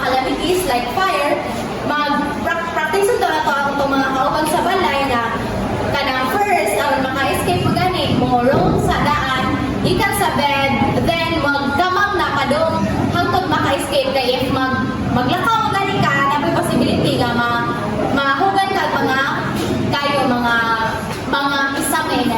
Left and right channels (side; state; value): both; identical; correlation 1.00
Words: calamities like fire, mag-practice ito na to ang mga kauban sa balay na kanang first, ang maka-escape mo gani, mo roll sa daan, ikan sa bed, then magkamang na padong hangtod maka-escape kay if maglakaw mo gani ka, na may possibility nga mahugan ka mga kayo mga isangay